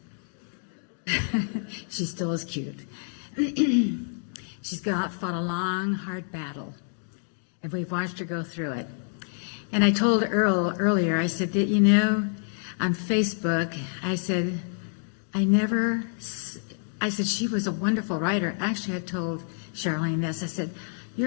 She still is cute. She's fought a long, hard battle, and we've watched her go through it. And I told Earl earlier, I said that, on Facebook, I said, she was a wonderful writer. Actually, I told Charlene this. I said,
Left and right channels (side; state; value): right; silent; digital silence